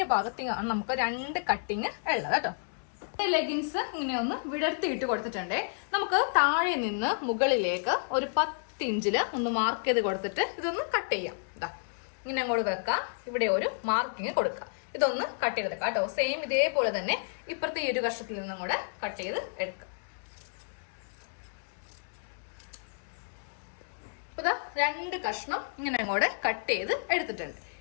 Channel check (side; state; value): right; silent; digital silence